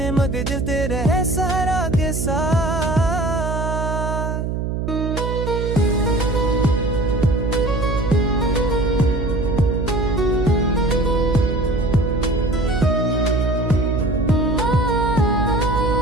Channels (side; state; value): right; noise; hum, 2 dB below the sound